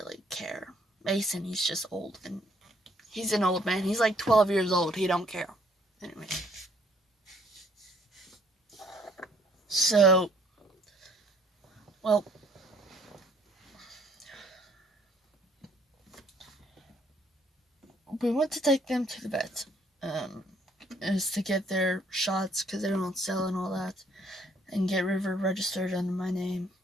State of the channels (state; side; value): normal; both; correlation 0.64